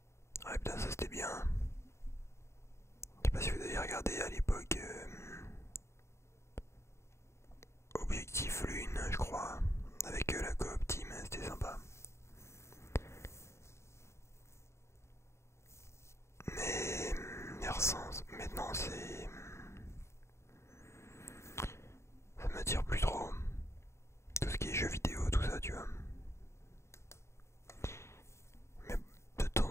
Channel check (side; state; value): right; late; 0.13 ms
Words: Ouais, putain, ça c'était bien. Je sais pas si vous avez regardé à l'époque Objectif Lune, je crois, avec la coop team, c'était sympa. Mais maintenant c'est... Ça m'attire plus trop. Tout ce qui est jeux vidéo, tout ça, tu vois. Mais de